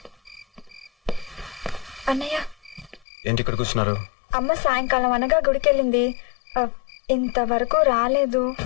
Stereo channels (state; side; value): drops out; right; at 3.0 s